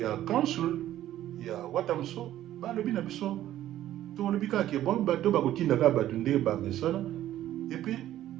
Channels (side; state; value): left; quieter; 12.9 dB